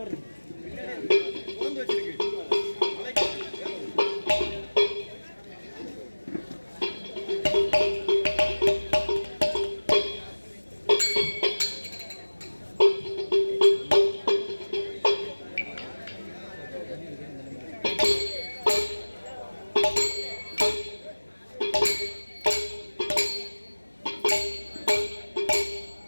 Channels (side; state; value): both; inverted; correlation -1.00